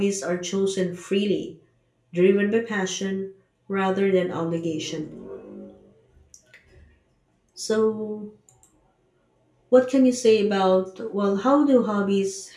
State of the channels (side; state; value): both; identical; correlation 1.00